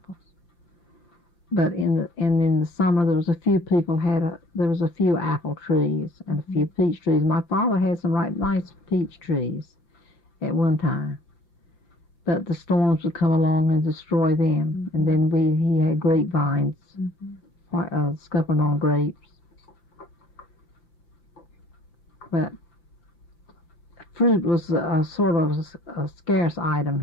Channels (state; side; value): late; right; 5.8 ms